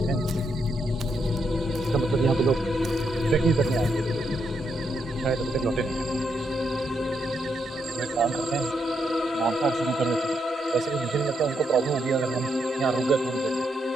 इसका मतलब यहाँ पे लोग ट्रैकिंग करने आएंगे, शायद अभी तक लौटे नहीं हैं। एक काम करते हैं, मांसाहार शुरू कर देते हैं। वैसे भी मुझे नहीं लगता उनको प्रॉब्लम होगी अगर हम यहाँ रुक गए थोड़ी देर।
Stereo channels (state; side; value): normal; both; correlation 0.79